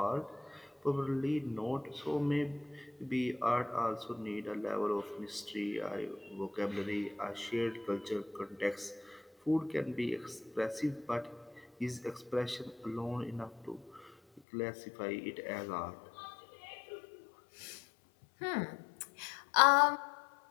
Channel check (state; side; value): drops out; right; at 14.4 s